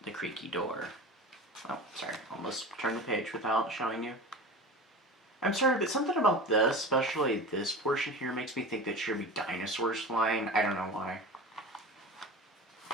door. Oh, sorry, almost turned the page without showing you. I'm sorry, but something about this, especially this portion here, makes me think that should be dinosaurs flying. I don't know why.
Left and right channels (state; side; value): normal; both; correlation 0.32